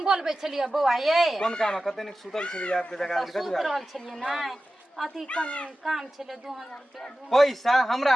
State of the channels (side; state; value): both; normal; correlation 0.95